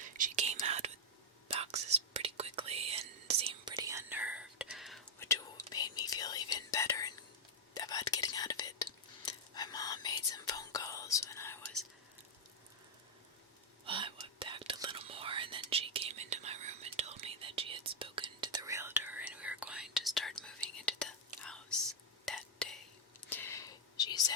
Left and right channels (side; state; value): both; normal; correlation -0.03